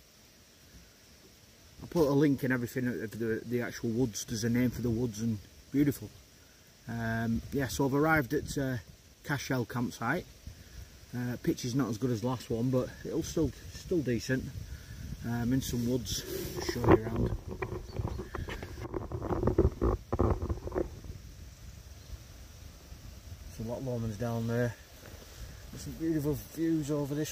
put a link and everything of the actual woods. There's a name for the woods and beautiful. Yeah, so I've arrived at Cashell campsite. Pitch is not as good as the last one, but it'll still decent. In some woods, I'll show you around. So Loch Lomond's down there. There's some beautiful views over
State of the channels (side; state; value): both; identical; correlation 1.00